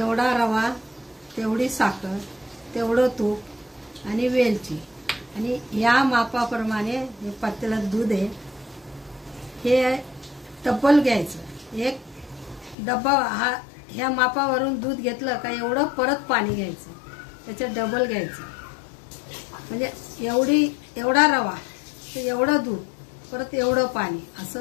रवा तेवढी साखर, तेवढं तूप आणि वेलची, आणि या मापाप्रमाणे हे पातेल्यात दूध आहे. हे डब्बल घ्यायचं, एक डब्बा हा ह्या मापावरून दूध घेतलं का एवढं परत पाणी घ्यायचं, त्याच्यात डबल घ्यायचं. म्हणजे एवढा रवा तर एवढं दूध परत एवढं पाणी,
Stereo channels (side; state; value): right; drops out; at 12.8 s